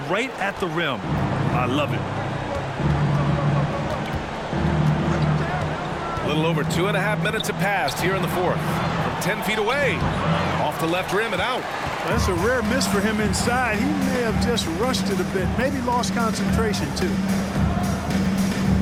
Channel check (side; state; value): both; identical; correlation 1.00